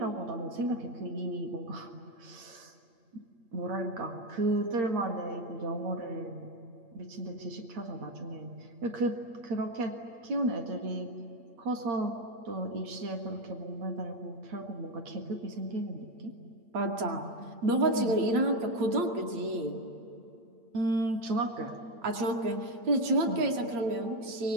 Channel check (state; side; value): late; left; 8.7 ms